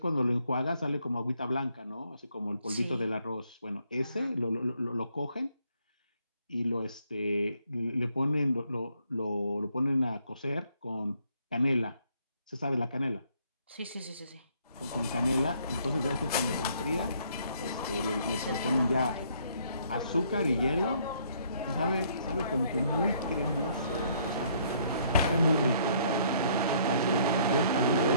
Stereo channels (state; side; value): inverted; both; correlation -0.66